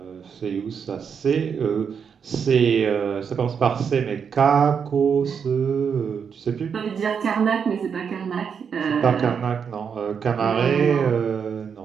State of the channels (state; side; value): quieter; left; 6.8 dB